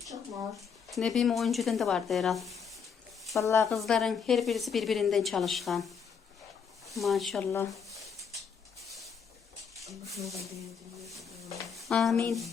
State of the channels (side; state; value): right; quieter; 6.6 dB